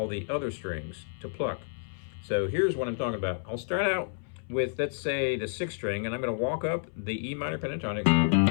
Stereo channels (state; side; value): silent; right; 58 dB below the other